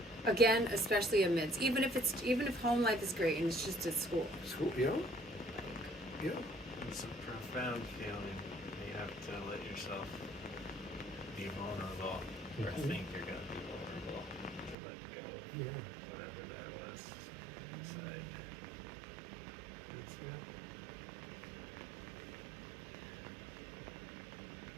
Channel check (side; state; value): left; drops out; at 14.8 s